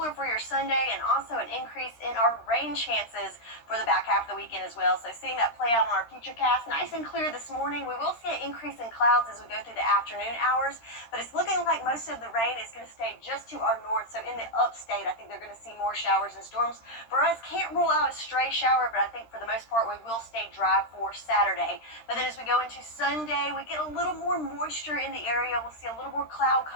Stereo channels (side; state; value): right; late; 13 ms